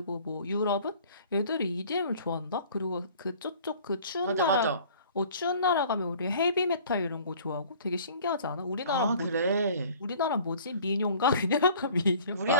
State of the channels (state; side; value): inverted; both; correlation -0.49